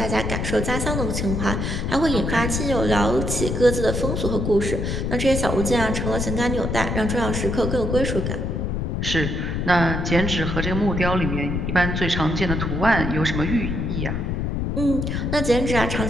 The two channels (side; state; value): left; noise; rumble, 1 dB below the sound